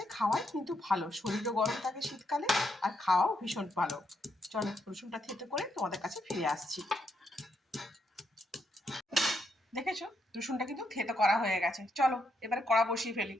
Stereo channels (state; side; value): normal; both; correlation 0.79